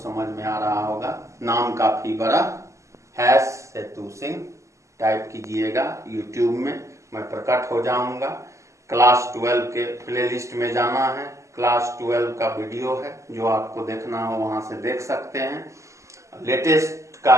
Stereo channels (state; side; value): late; left; 0.15 ms